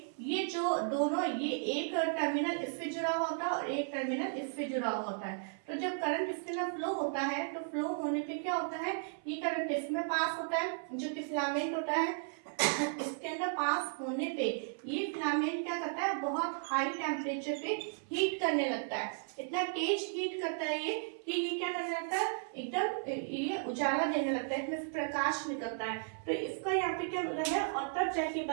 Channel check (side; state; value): left; silent; 54 dB below the other